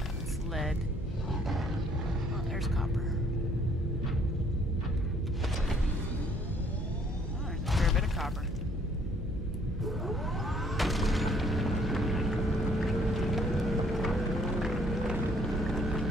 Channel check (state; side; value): normal; both; correlation 0.63